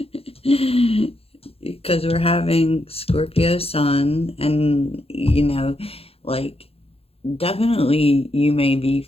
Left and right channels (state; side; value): late; right; 0.28 ms